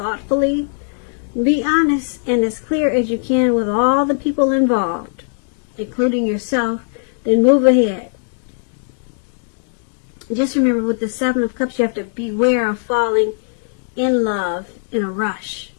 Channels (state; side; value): silent; right; digital silence